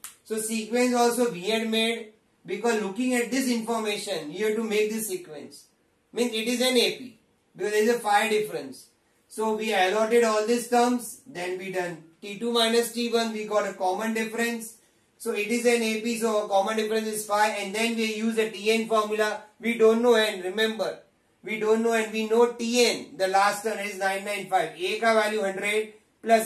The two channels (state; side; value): identical; both; correlation 1.00